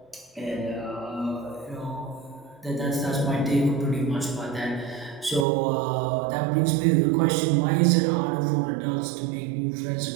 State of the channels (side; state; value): left; drops out; at 5.5 s